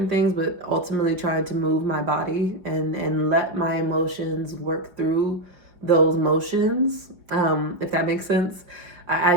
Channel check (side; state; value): left; late; 5.0 ms